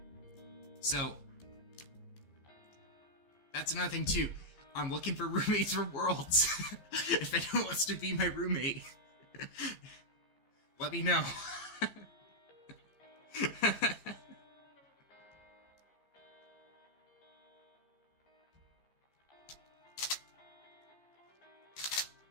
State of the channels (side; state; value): right; late; 15 ms